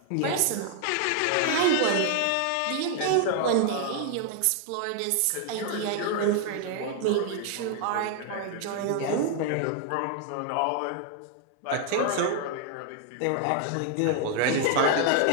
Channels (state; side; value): different; both; correlation 0.00